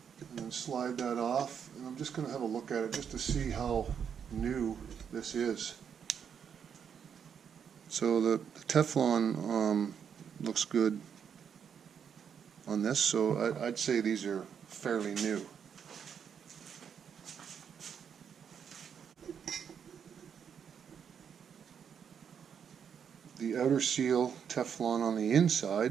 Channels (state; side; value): quieter; left; 7.6 dB